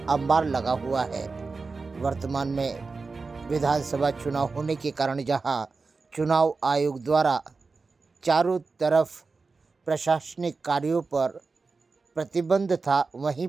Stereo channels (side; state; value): left; quieter; 4.2 dB